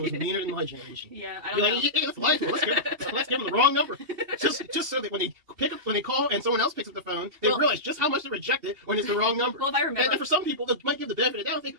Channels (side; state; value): left; late; 2.8 ms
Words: was like. meaner than my generation. Yeah, I Be don't know. like, hey, let's lie to them. Let's give them the wrong number. Just so that when they call and someone else picks up the phone, they realize just how much they reject it when it's the wrong number. Well, if I remember. And for some people, they might give the benefit of the doubt and think,